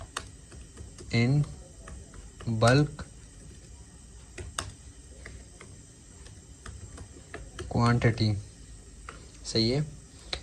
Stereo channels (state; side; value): identical; both; correlation 1.00